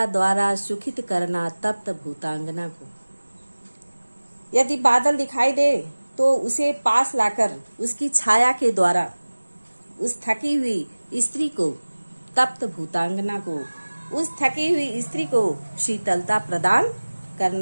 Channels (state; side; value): inverted; both; correlation -1.00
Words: द्वारा सुखित करना तप्त भूतांगना को। यदि बादल दिखाई दे तो उसे पास लाकर उसकी छाया के द्वारा उस थकी हुई स्त्री को, तप्त भूतांगना को, उस थकी हुई स्त्री को शीतलता प्रदान